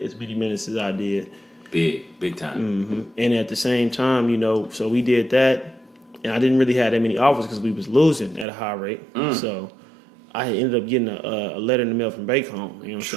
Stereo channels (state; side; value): drops out; left; at 8.5 s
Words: as many minutes as I did. Big time. And at the same time, so we did that, and I didn't really have that many offers because we was losing at a high rate. So I ended up getting a letter in the mail from Bacon, you know what I'm